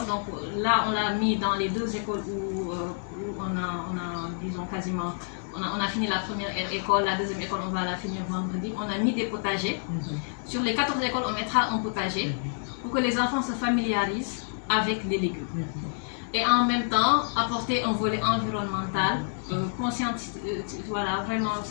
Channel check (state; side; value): silent; right; digital silence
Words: donc là on l'a mis dans les 2 écoles où on a disons quasiment, on a fini la première école, la deuxième école on va la finir vendredi, on a mis des potagers. Sur les 14 écoles on mettra un potager pour que les enfants se familiarisent avec les légumes. Et en même temps apporter un volet environnemental, voilà, vraiment